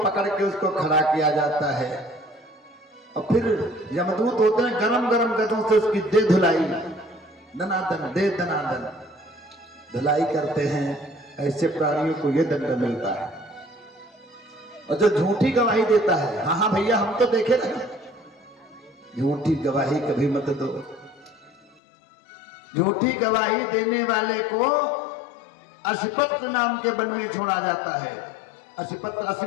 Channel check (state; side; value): drops out; right; at 21.8 s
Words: के उसको खड़ा किया जाता है और फिर यमदूत होते हैं, गरम गरम गदों से उसकी दे धुलाई, दनादन दे दनादन धुलाई करते हैं। ऐसे प्राणियों को यह दंड मिलता है। और जो झूठी गवाही देता है, हाँ हाँ भैया हम तो देखे ना, झूठी गवाही कभी मत दो। झूठी गवाही देने वाले को असिपत्र नाम के वन में छोड़ा जाता है। असिपत्र,